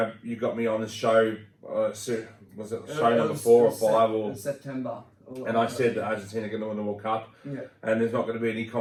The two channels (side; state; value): both; identical; correlation 1.00